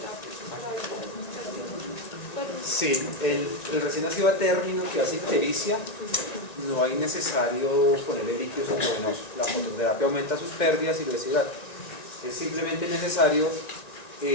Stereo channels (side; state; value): right; late; 1.9 ms